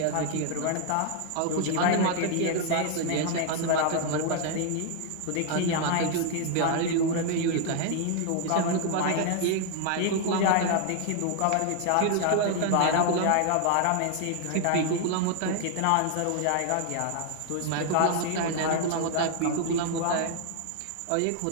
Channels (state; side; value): different; both; correlation 0.00